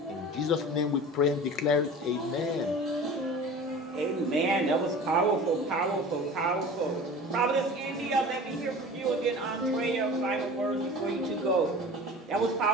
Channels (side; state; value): both; normal; correlation 0.38